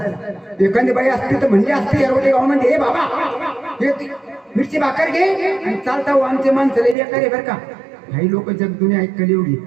एखादी बाई असती तर म्हणजे असते एवढे गावामध्ये, हे बाबा हे मिरची भाकर घे आणि चालता आमचे माणसं लई बेकार आहे बरं का. काही लोक जग दुनिया ऐकली एवढी.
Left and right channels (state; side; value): drops out; left; at 7.0 s